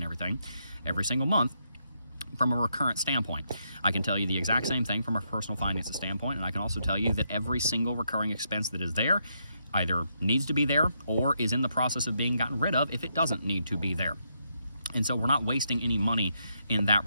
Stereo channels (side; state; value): both; inverted; correlation -0.79